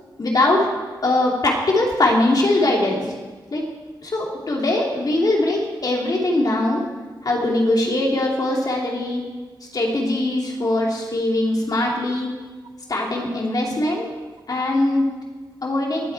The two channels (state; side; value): normal; both; correlation 0.77